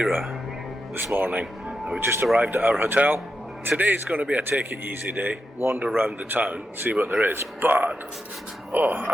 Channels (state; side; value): normal; both; correlation 0.86